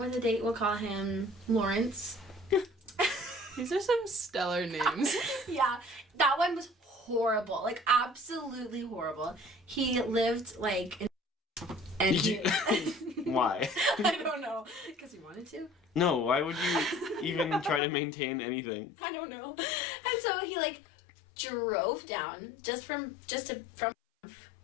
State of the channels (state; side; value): drops out; right; at 17.8 s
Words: a date, we'll call him Lawrence. These are some stellar names. Yeah, that one was horrible, like absolutely horrible. He lived like in and he, Why? I don't know, because he wanted to. No, why would you even try to maintain anything? I don't know. And so he like drove down from